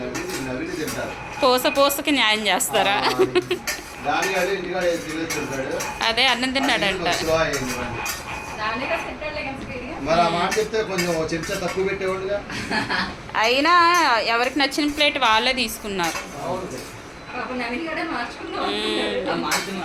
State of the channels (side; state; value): both; identical; correlation 1.00